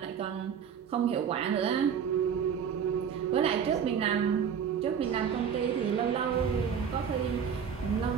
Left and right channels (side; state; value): left; quieter; 7.6 dB